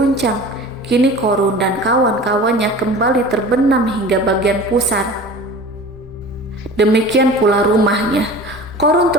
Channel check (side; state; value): both; normal; correlation 0.39